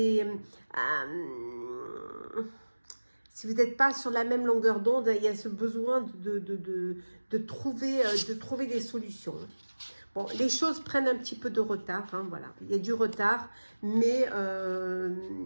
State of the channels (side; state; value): both; inverted; correlation -1.00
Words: si vous n'êtes pas sur la même longueur d'onde, il y a ce besoin de trouver des solutions. Bon, les choses prennent un petit peu de retard, hein, voilà. Il y a du retard, mais